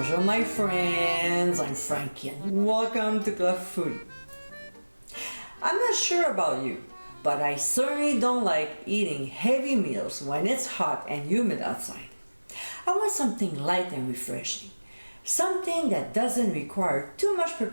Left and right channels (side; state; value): both; inverted; correlation -1.00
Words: my friends, I'm Frankie and welcome to Club Foodie. I'm not sure about you, but I certainly don't like eating heavy meals when it's hot and humid outside. I want something light and refreshing, something that doesn't require too much